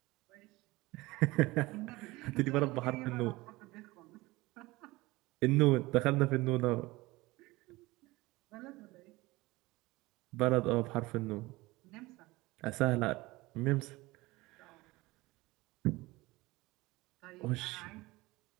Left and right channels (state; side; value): quieter; left; 20.8 dB